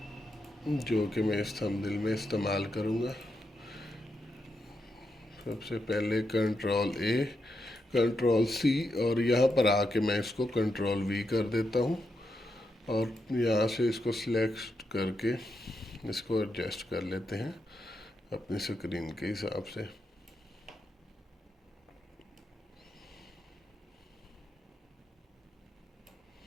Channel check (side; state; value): both; normal; correlation 0.84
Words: जो कि मैं इस थंबनेल में इस्तेमाल करूँगा। सबसे पहले Ctrl+A, Ctrl+C, और यहाँ पर आके मैं इसको Ctrl+V कर देता हूँ, और यहाँ से इसको सिलेक्ट करके इसको एडजस्ट कर लेते हैं अपनी स्क्रीन के हिसाब से।